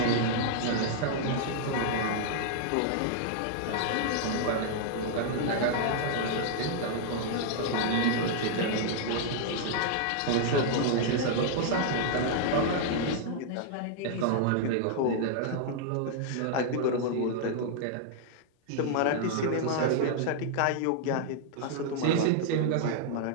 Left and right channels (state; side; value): different; both; correlation -0.01